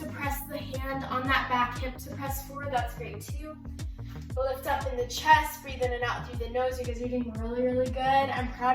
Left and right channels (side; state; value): both; identical; correlation 1.00